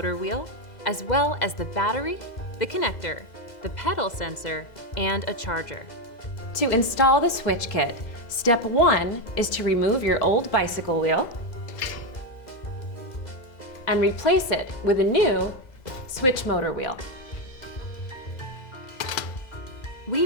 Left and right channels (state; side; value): late; right; 2.0 ms